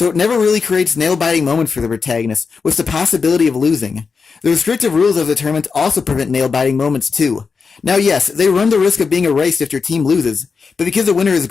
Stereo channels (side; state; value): right; quieter; 5.1 dB